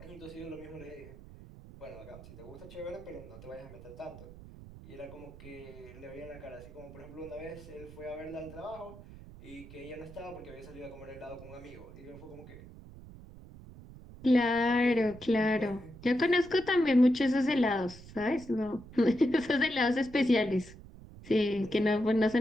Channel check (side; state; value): right; noise; rumble, 17 dB below the sound